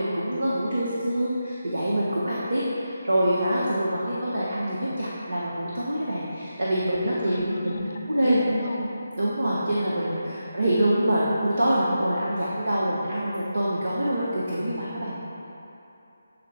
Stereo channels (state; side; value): inverted; both; correlation -0.89